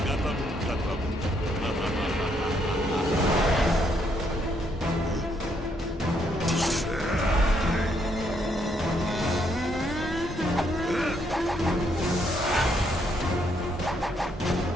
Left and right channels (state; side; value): normal; both; correlation 0.73